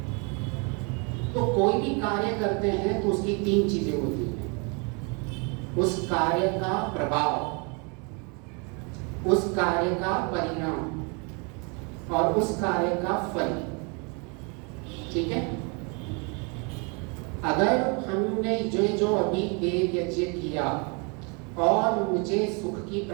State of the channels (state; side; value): quieter; left; 33.3 dB